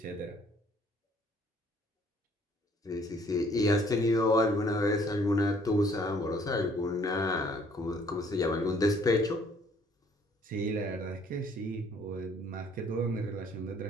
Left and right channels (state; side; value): normal; both; correlation 0.61